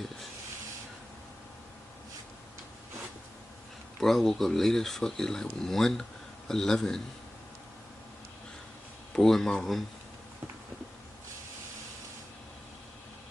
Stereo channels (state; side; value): normal; both; correlation 0.96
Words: Bro, I woke up late as fuck. It's like 1:11. Bro, in my room.